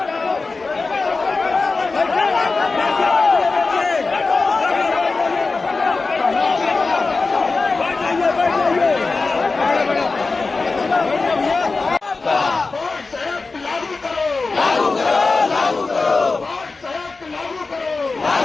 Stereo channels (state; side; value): quieter; right; 3.9 dB